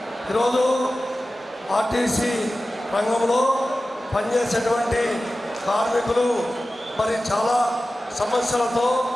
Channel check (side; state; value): both; normal; correlation 0.95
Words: ఈరోజు ఆర్టీసీ రంగంలో పనిచేసేటువంటి కార్మికులు మరి చాలా సమస్యలతో